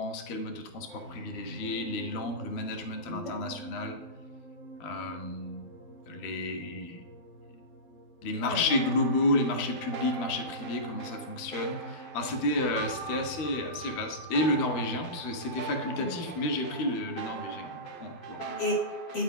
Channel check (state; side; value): late; right; 13 ms